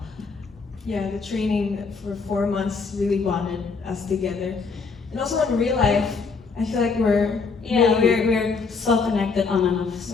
Yeah, the training for 4 months really bonded us together. And also in real life, I feel like we're so connected on and off like,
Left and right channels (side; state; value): right; quieter; 4.8 dB